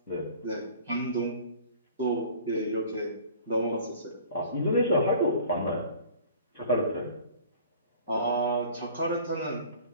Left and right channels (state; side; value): inverted; both; correlation -0.46